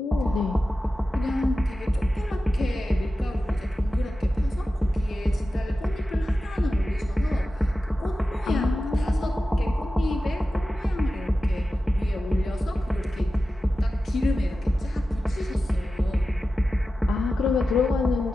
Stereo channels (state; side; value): normal; both; correlation 0.93